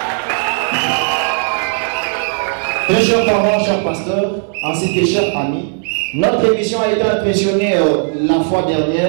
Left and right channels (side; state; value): left; silent; 69 dB below the other